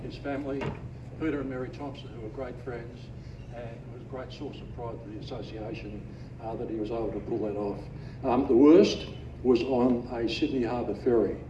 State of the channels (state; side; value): identical; both; correlation 1.00